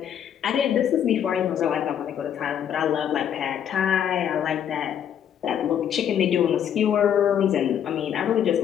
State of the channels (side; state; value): right; quieter; 9.2 dB